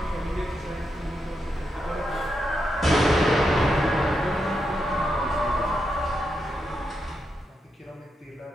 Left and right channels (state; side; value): normal; both; correlation 0.84